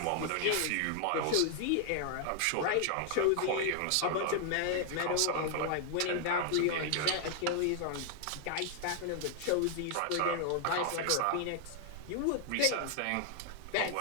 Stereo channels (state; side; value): different; both; correlation 0.00